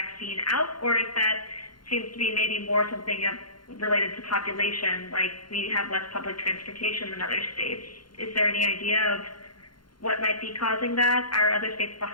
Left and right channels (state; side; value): late; right; 0.72 ms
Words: out, or if that seems to be maybe more something related to population, like we have less public transportation than other states. Is there any idea of what might be causing that? Are other states